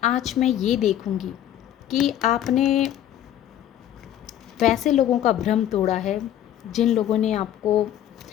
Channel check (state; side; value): quieter; right; 11.5 dB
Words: आज मैं ये देखूँगी कि आपने वैसे लोगों का भ्रम तोड़ा है जिन लोगों ने आपको